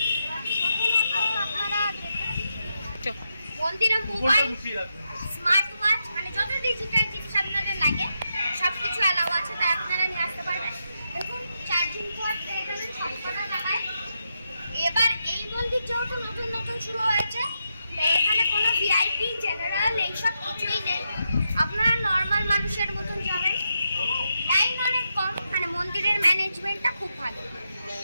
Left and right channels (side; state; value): both; inverted; correlation -0.84